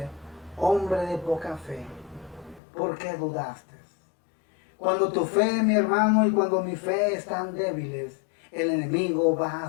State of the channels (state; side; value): drops out; right; at 2.6 s